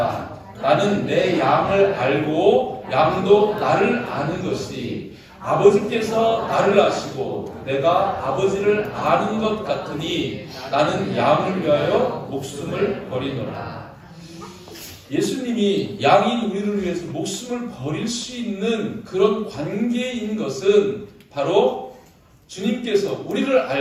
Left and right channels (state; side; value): identical; both; correlation 1.00